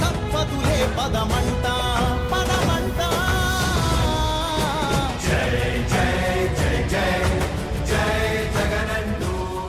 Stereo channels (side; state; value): both; identical; correlation 1.00